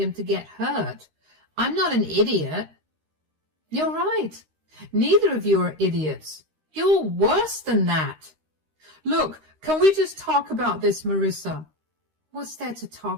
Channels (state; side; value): late; left; 13 ms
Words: to get hurt. I'm not an idiot. You're right. Neither of you are idiots. You're worse than that. Look, can we just talk about this, Marissa? What's there to